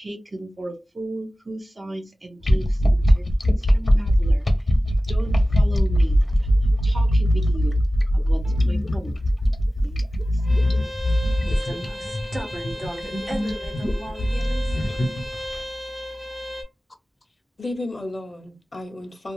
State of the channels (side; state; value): both; normal; correlation 0.96